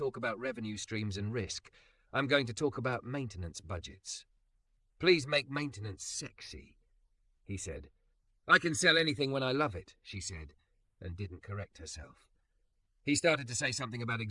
about revenue streams and risk. I'm going to talk about maintenance budgets. Please make maintenance sexy, he said. I can sell anything when I love it, she said, and didn't correct herself. He started to say something about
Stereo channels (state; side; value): identical; both; correlation 1.00